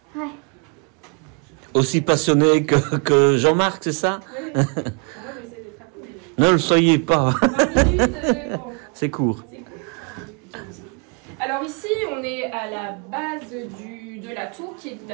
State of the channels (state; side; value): quieter; left; 35.2 dB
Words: Ouais. Aussi passionné que Jean-Marc, c'est ça? Oui. Moi, je vais essayer d'être rapide. Ne le soyez pas. 20 minutes, bon. C'est court. Alors ici, on est à la base de la tour qui